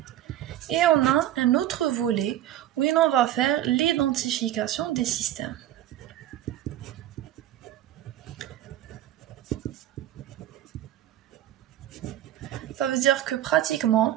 Et on a un autre volet où on va faire l'identification des systèmes. Ça veut dire que pratiquement,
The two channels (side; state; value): left; quieter; 12.7 dB